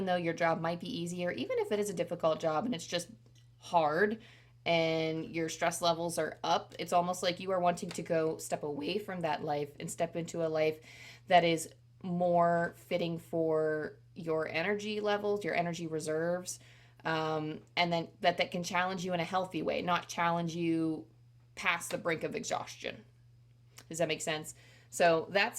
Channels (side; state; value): both; identical; correlation 1.00